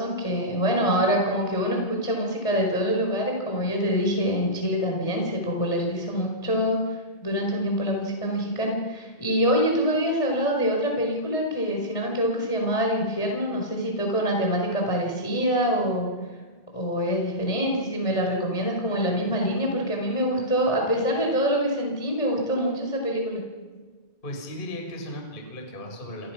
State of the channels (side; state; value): right; late; 1.6 ms